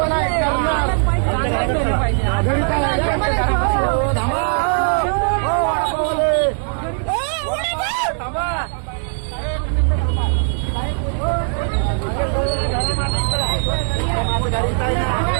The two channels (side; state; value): left; silent; digital silence